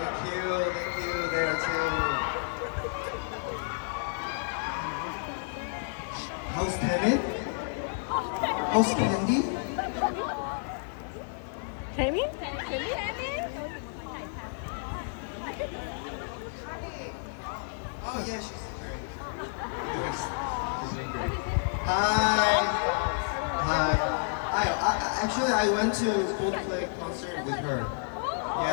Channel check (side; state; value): right; silent; digital silence